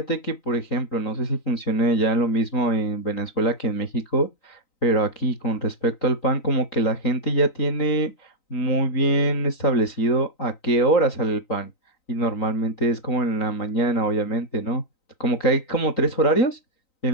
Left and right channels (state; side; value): late; right; 3.9 ms